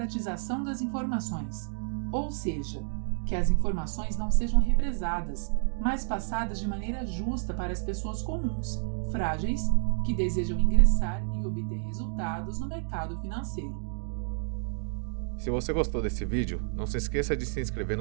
das informações, ou seja, que as informações não sejam represadas, mas passadas de maneira justa para as pessoas comuns, frágeis, que desejam ingressar e obter resultados no mercado financeiro. Se você gostou desse vídeo, não se esqueça de se inscrever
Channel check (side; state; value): left; silent; digital silence